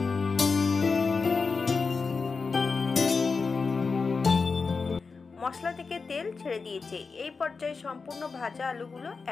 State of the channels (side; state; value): right; quieter; 4.7 dB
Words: মশলা থেকে তেল ছেড়ে দিয়েছে। এই পর্যায়ে সম্পূর্ণ ভাজা আলুগুলো